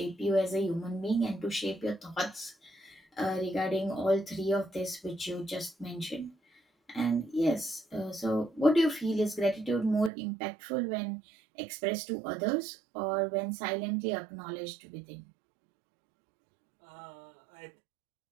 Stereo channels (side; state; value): left; drops out; at 10.1 s